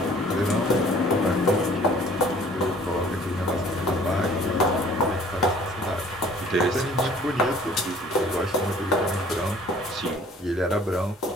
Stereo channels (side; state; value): both; normal; correlation 0.54